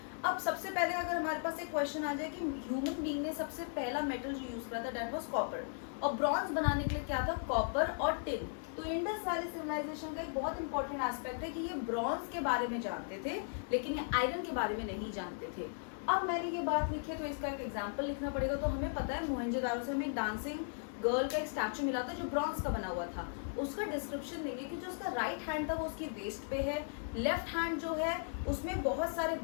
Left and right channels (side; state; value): right; silent; digital silence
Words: अब सबसे पहले अगर हमारे पास एक क्वेश्चन आ जाए कि ह्यूमन बीइंग ने सबसे पहला मेटल जो यूज करा था दैट वाज कॉपर, और ब्रॉन्ज बनाने के लिए क्या था, कॉपर और टिन। तो इंडस वैली सिविलाइजेशन का एक बहुत इंपॉर्टेंट एस्पेक्ट है कि ये ब्रॉन्ज के बारे में जानते थे लेकिन ये आयरन के बारे में नहीं जानते थे। अब मैंने ये बात लिखी है तो इसका एक एग्जाम्पल लिखना पड़ेगा। तो हमें पता है मोहनजोदारो से हमें एक डांसिंग गर्ल का एक स्टैचू मिला था जो ब्रॉन्ज का बना हुआ था। उसका डिस्क्रिप्शन देंगे कि जो उसका राइट हैंड था वो उसकी वेस्ट पे है, लेफ्ट हैंड जो है उसमें बहुत सारे